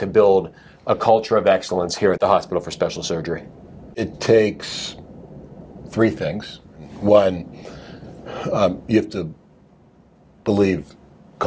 build a culture of excellence here at the Hospital for Special Surgery. It takes three things. One, you have to believe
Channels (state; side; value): identical; both; correlation 1.00